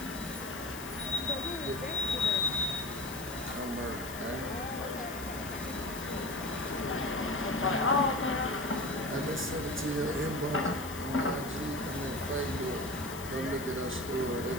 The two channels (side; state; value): left; noise; hiss, 12 dB below the sound